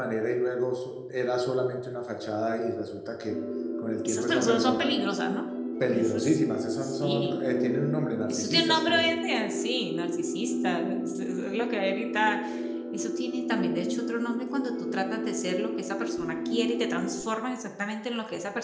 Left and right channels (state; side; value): identical; both; correlation 1.00